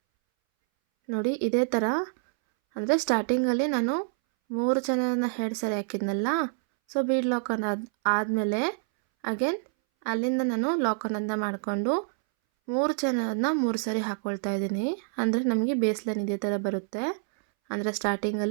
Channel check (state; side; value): silent; left; 60 dB below the other